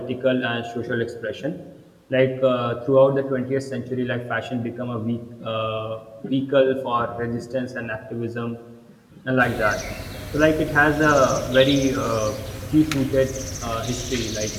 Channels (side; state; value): both; identical; correlation 1.00